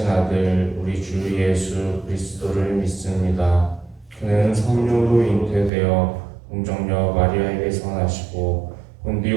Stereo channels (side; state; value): left; drops out; at 5.7 s